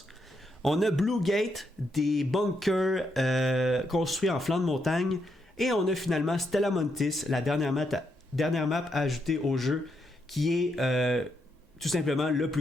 On a Blue Gate, des bunkers construits en flanc de montagne. Et on a finalement Stella Montis, la dernière map ajoutée au jeu, qui est tout simplement le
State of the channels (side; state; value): both; normal; correlation 0.79